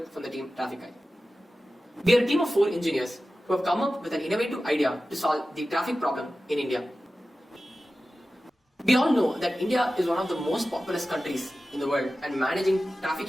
from the team Traffic Eye. We are a team of 4 engineers who have come up with an innovative idea to solve the traffic problem in India. We all know that India is one of the most populous countries in the world and managing traffic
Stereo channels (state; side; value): normal; both; correlation 0.95